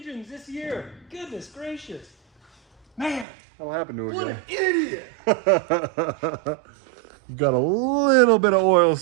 this year. Goodness gracious. Man, That'll happen to a what guy. an idiot. Got a little bit of oil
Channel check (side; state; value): left; drops out; at 3.2 s